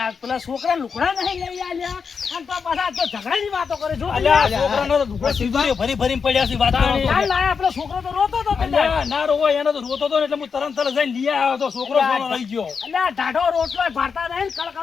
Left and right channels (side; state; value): right; quieter; 5.8 dB